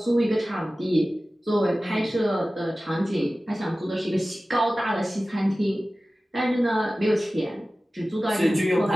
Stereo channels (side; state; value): both; normal; correlation 0.96